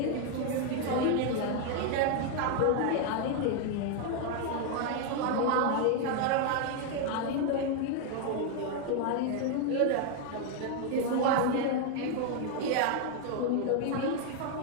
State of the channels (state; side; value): different; both; correlation 0.00